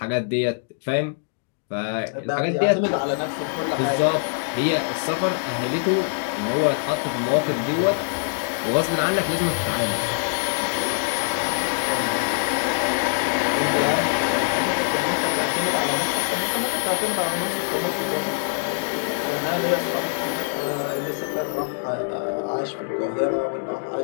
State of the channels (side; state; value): right; silent; digital silence